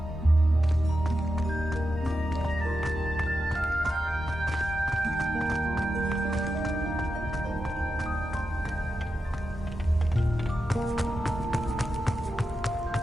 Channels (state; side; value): normal; both; correlation 0.89